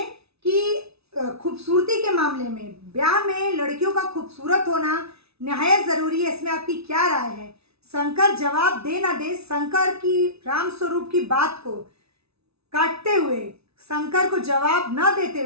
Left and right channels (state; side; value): late; left; 0.79 ms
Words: कि खूबसूरती के मामले में, ब्याह में लड़कियों का खूबसूरत होना निहायत ज़रूरी है, इसमें आपकी क्या राय है? शंकर जवाब दे ना दे, शंकर की रामस्वरूप की बात को काटते हुए, शंकर को जवाब न देते